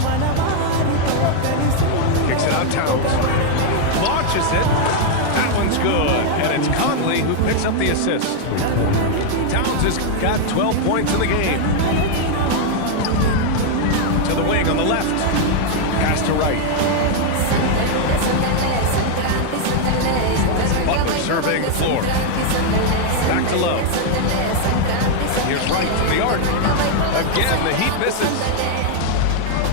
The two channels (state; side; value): different; both; correlation 0.00